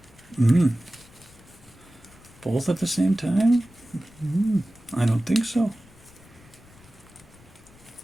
Both at the same time? I don't think so.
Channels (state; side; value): noise; left; rumble, 25 dB below the sound